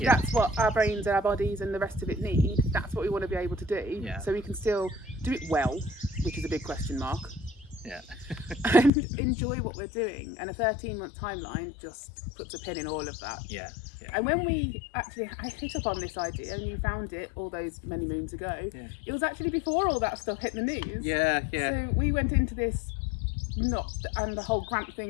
that's what our brains and our bodies and the rest of it need, that's what we want to be able to do. Yeah. So we can still do it well, which is a big question mark. Yeah. And enjoy what we're doing. And a 13-month timeline just puts a pin in all of that. Yeah. Yeah. And when I hit up on this idea and you found it all those many moons ago, it was actually before all that stuff hit the news. Yeah, yeah. So we went into this and the whole grant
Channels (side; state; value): right; drops out; at 8.9 s